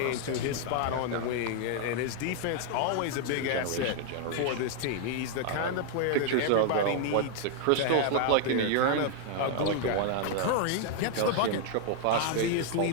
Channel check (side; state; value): both; different; correlation 0.00